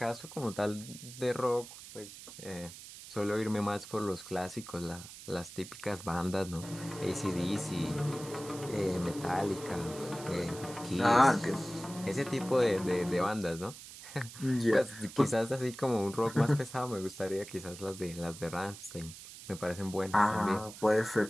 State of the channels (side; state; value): right; noise; hiss, 14 dB below the sound